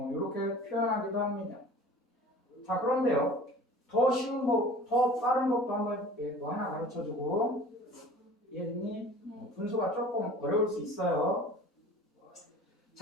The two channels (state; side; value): normal; both; correlation 0.43